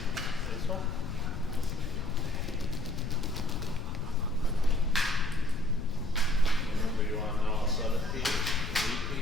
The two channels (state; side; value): noise; left; rumble, 7 dB below the sound